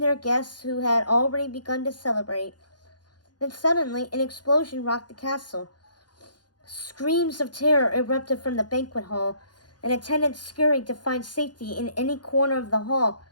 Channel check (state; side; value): late; right; 0.70 ms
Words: their guests who had already begun to celebrate. Then suddenly an explosion rocked the castle. Screams of terror erupted from the banquet hall, and attendants scurried to find safety in any corner of the hall